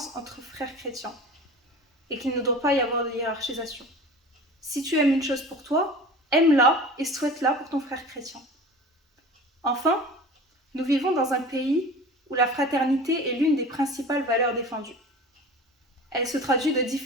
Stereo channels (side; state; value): both; normal; correlation 0.38